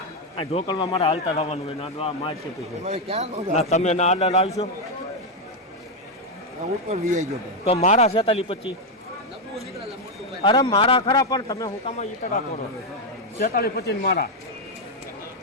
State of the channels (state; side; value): normal; both; correlation 0.03